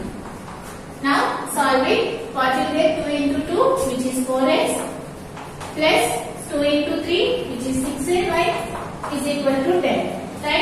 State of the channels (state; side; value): identical; both; correlation 1.00